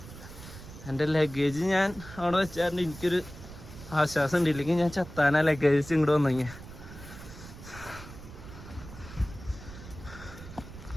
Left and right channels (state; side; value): noise; right; rumble, 15 dB below the sound